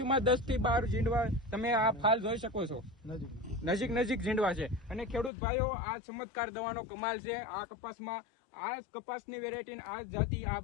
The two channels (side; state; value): right; drops out; at 5.3 s